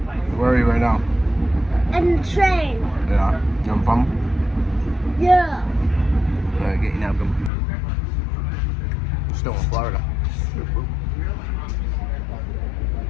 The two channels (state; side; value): drops out; right; at 7.5 s